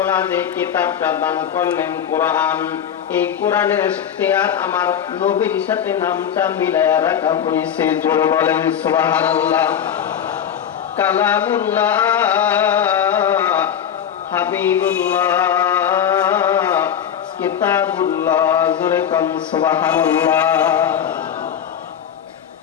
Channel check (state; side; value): quieter; right; 8.9 dB